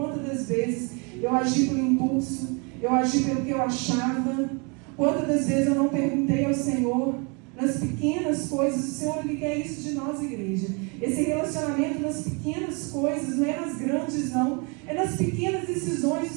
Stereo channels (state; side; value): quieter; left; 32.8 dB